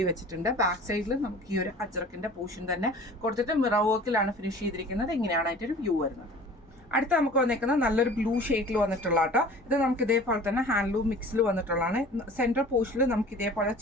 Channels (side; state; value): both; normal; correlation 0.44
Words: വെച്ചിട്ടുണ്ട്. ബാക്ക് സൈഡിൽ നമുക്ക് ഈ ഒരു അജ്രക്കിന്റെ പോർഷൻ തന്നെ കൊടുത്തിട്ട് മിറർ വർക്കിലാണ് ഫിനിഷ് ചെയ്തിരിക്കുന്നത്. ഇങ്ങനെയാണ് അതിന്റെ വ്യൂ വരുന്നത്. അടുത്ത നമുക്ക് വന്നേക്കുന്നത് നല്ലൊരു ബ്ലൂ ഷെയ്ഡിൽ വന്നിട്ടുള്ള കേട്ടോ. ഇത് നമുക്ക് ഇതേപോലെ തന്നെ ഹാൻഡ്ലൂം മിക്സിൽ വന്നിട്ടുള്ളതാണ്. സെൻട്രൽ പോർഷനിൽ നമുക്ക് ഇതേപോലെ